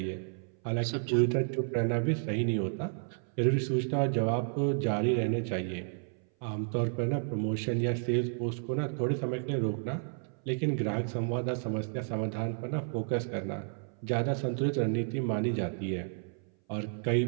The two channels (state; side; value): silent; left; 57 dB below the other